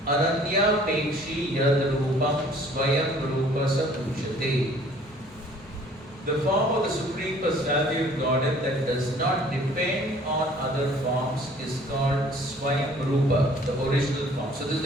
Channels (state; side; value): normal; both; correlation 0.54